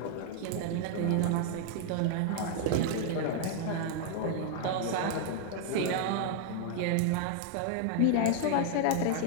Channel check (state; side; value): different; both; correlation 0.00